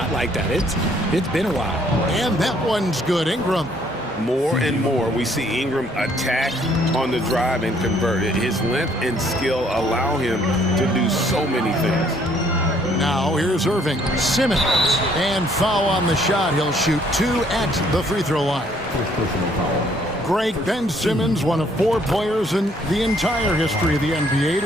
like that. It's been a while. And that one's good. Ingram. More and more, we see Ingram attack on the drive and convert it. His length and skill allow him to do so many things. Now here's Irving. Simmons. And foul on the shot. He'll shoot 2 at the free throw line. Greg Ben Simmons, one of 4 players in the entire history of the NBA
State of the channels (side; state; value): both; normal; correlation 0.64